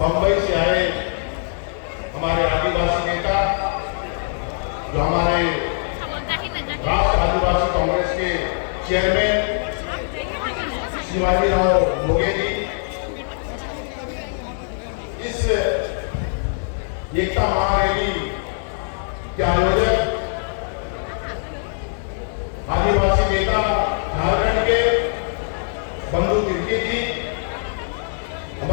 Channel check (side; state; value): right; silent; 64 dB below the other